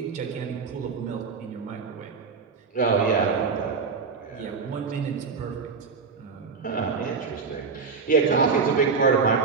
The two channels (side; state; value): left; quieter; 5.1 dB